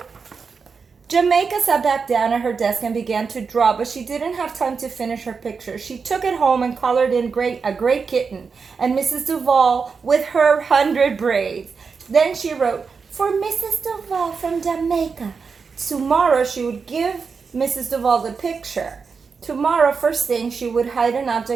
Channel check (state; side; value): quieter; left; 5.3 dB